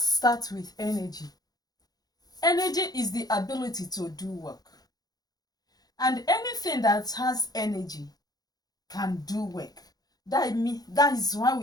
start with energy. Energy is the ability to do work. And anything that has energy can do work. That is why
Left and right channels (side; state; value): right; late; 0.19 ms